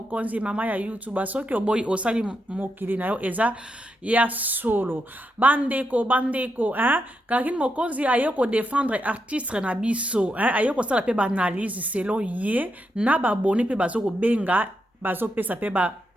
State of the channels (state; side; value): normal; both; correlation 0.83